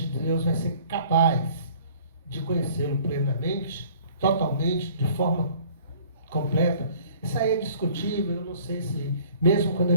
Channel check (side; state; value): both; inverted; correlation -0.52